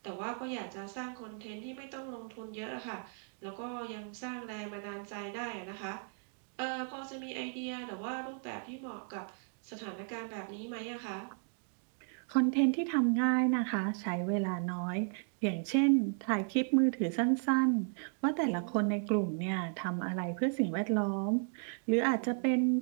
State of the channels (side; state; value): left; silent; 55 dB below the other